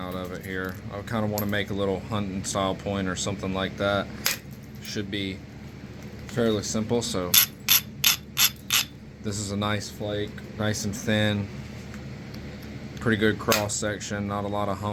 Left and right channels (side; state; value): both; identical; correlation 1.00